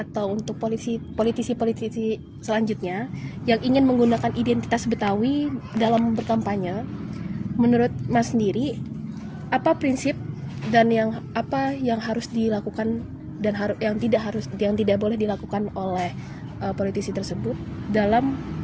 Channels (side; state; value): both; identical; correlation 1.00